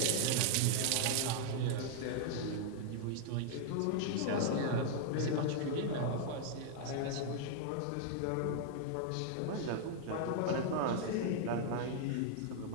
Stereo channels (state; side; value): different; both; correlation -0.01